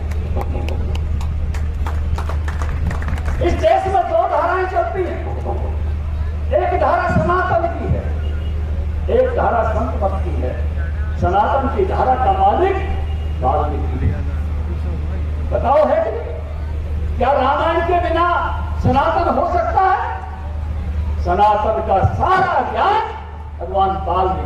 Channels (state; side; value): identical; both; correlation 1.00